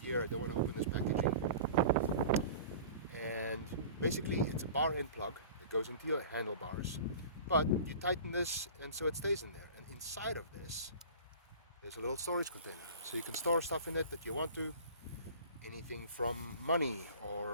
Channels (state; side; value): inverted; both; correlation -0.40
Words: here. I don't want to open this packaging. And basically it's a bar end plug that goes into your handlebars. But you tighten this and so it stays in there. And inside of this there's a little storage container. So you can store stuff in it that you want to. Anything from money,